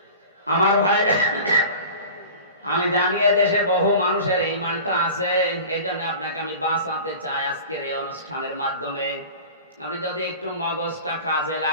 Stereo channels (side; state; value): both; inverted; correlation -0.38